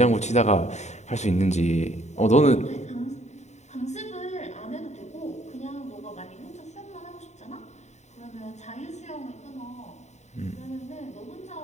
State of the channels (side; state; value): right; late; 0.33 ms